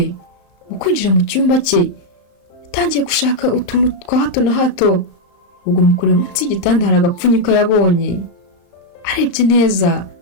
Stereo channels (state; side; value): late; right; 34 ms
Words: mu kwinjira mu cyumba cye, yatangiye gushaka utuntu twa hato na hato. Ubwo mukurira munsi y'igitanda hari agapfunyika yabonye, arebye neza